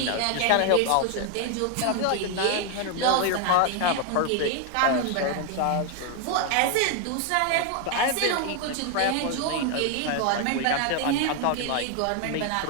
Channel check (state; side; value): different; both; correlation 0.01